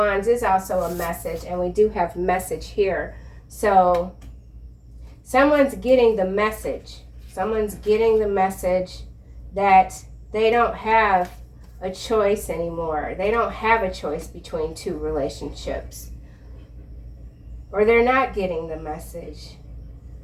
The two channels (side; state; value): both; identical; correlation 1.00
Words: is also a message, and we do have message here. So someone's getting the message. Someone's getting the message that they don't have a choice anymore. They don't have a choice between 2 relationships. Or they're not getting the message.